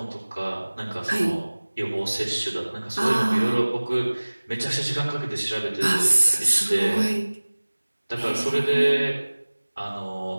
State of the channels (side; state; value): both; inverted; correlation -1.00